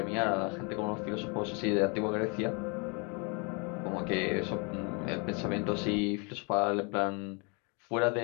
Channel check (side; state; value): right; quieter; 33.4 dB